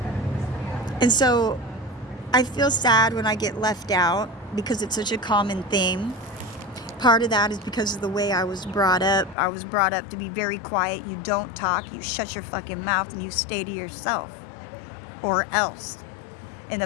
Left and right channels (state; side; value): drops out; right; at 9.3 s